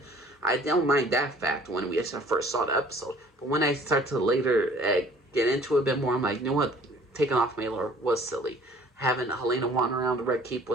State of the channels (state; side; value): normal; both; correlation 0.53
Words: I don't mind that fact when we first saw the episode. But when I start to later get into it a bit more, I'm like, you know what? Taking off Maelor was silly. Having Helaena wander around the Red Keep